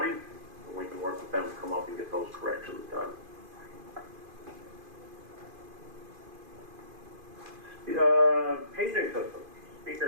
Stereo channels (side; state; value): left; late; 2.5 ms